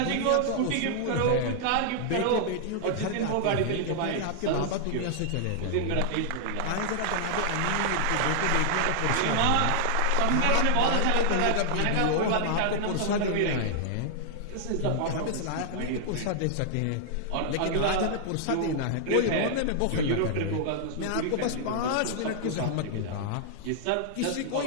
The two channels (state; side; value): different; both; correlation -0.01